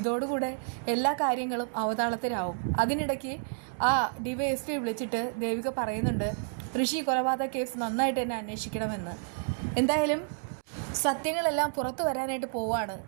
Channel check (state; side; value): silent; left; 58 dB below the other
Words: എല്ലാ കാര്യങ്ങളും അവതാളത്തിലാവും. അതിനിടയ്ക്ക് ആ DYSP വിളിച്ചിട്ട് ദേവിക പറയുന്നുണ്ട്, ഋഷി കൊലപാതക കേസ് നന്നായിട്ട് തന്നെ അന്വേഷിക്കണമെന്ന്. എന്തായാലും സത്യങ്ങളെല്ലാം പുറത്തു വരാനായിട്ട് പോവാണ്.